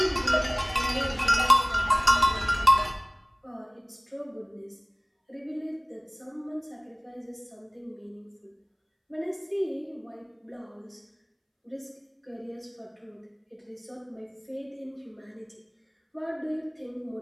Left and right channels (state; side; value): identical; both; correlation 1.00